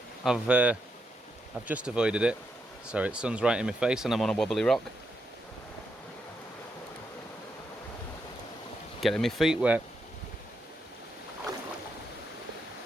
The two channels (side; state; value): both; normal; correlation 0.82